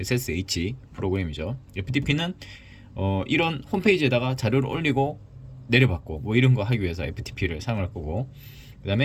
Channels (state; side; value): identical; both; correlation 1.00